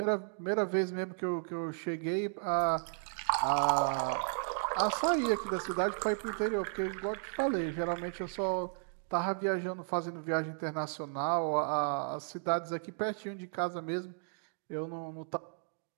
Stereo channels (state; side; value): silent; left; digital silence